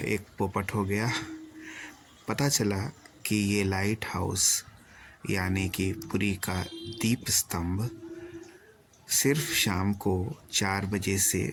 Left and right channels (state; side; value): identical; both; correlation 1.00